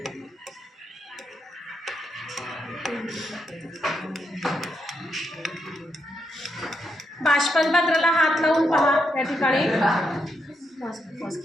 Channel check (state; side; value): normal; both; correlation 0.81